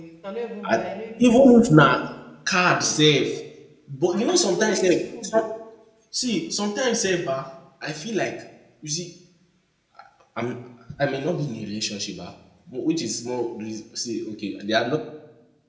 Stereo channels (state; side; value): identical; both; correlation 1.00